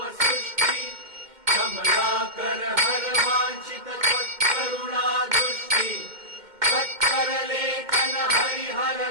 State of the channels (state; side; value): late; left; 2.1 ms